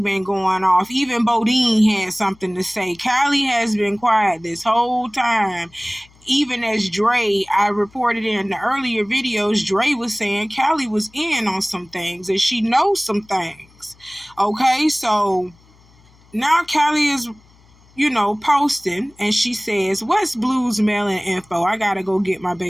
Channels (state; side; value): noise; left; hum, 29 dB below the sound